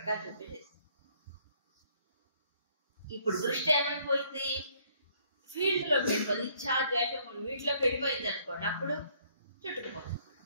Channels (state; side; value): inverted; both; correlation -0.65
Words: ఇప్పుడు దృష్టి ఏమైపోయింది? ఫీల్డ్లోకి వెళ్ళిపోయింది. ఇచ్ఛా ద్వేషములు వీటిలోకి వెళ్ళిపోయింది అనుకోండి, అప్పుడు చుట్టుకుపోతుంది.